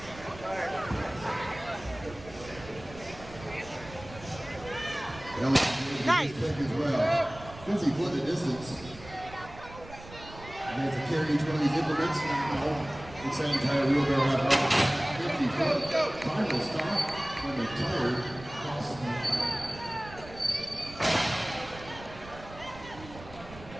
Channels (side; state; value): right; noise; rumble, 17 dB below the sound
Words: Nice. As well. Since he put the distance, and to carry each one of these implements, it's that entire wheelbarrow apparatus. 50 foot. Final stop when the tire crosses the